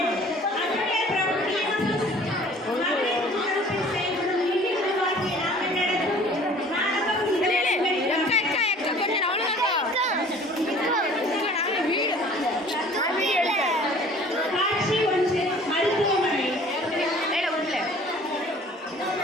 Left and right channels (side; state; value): both; normal; correlation 0.50